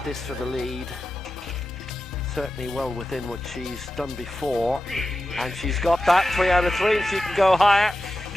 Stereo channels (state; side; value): normal; both; correlation 0.92